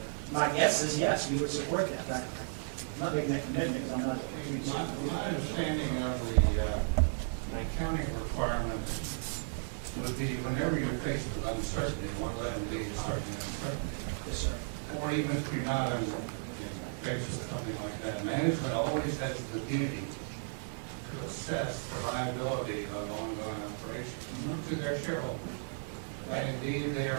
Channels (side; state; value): left; silent; digital silence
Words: my guess is yes, we would support that. I'm not making that commitment because I'm not. My understanding of the accounting requirements would be whenever you're faced with uncertainty, one of them is certainly uncertainty. Yes, sir. Or even if you're not faced with something like that, management always has the duty to assess the viability of ongoing operations to their shareholders. And indeed, they